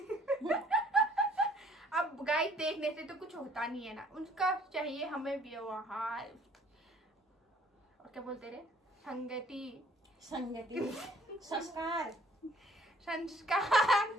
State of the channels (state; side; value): normal; both; correlation 0.58